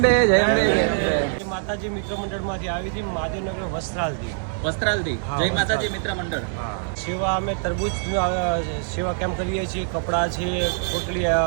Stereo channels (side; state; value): left; silent; digital silence